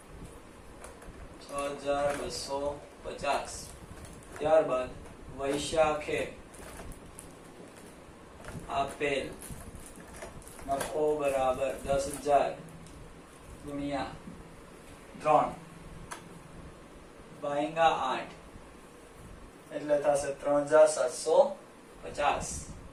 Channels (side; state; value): both; identical; correlation 1.00